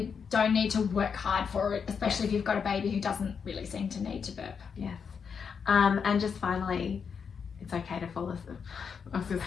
don't need to work hard for it, especially if you've got a baby who doesn't really seem to need to burp. And just finally, it's okay to fall asleep. I was going to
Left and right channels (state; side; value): quieter; right; 6.4 dB